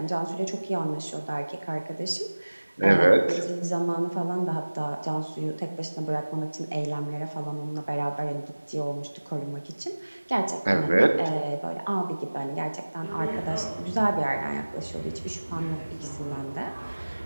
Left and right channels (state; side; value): inverted; both; correlation -1.00